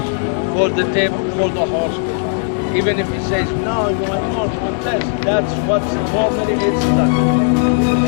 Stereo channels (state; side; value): silent; right; 68 dB below the other